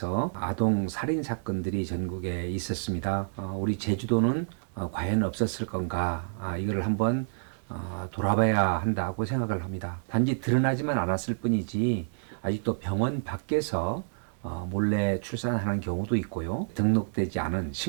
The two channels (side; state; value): left; silent; digital silence